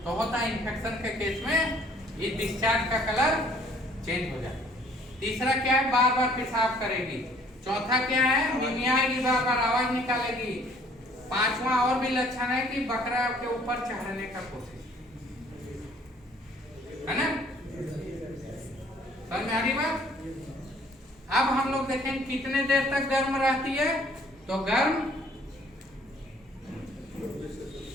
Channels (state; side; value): normal; both; correlation 0.58